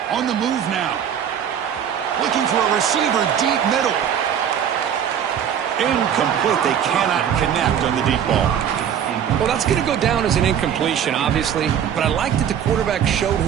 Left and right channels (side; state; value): left; quieter; 8.9 dB